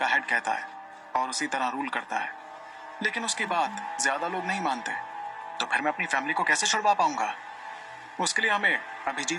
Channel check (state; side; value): identical; both; correlation 1.00